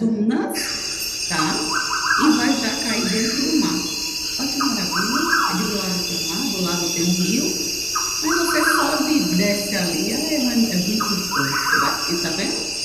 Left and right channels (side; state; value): both; identical; correlation 1.00